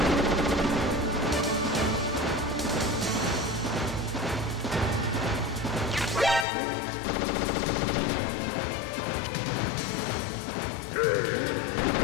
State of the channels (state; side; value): drops out; right; at 6.5 s